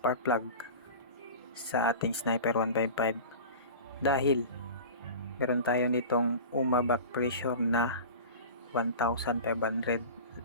plug sa ating Sniper 155 dahil meron tayo nitong back pressure na 1,500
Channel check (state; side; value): inverted; both; correlation -0.34